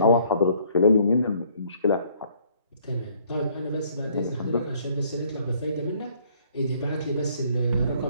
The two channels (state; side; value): inverted; both; correlation -0.63